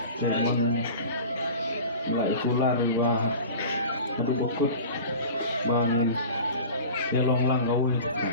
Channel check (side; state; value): both; inverted; correlation -0.37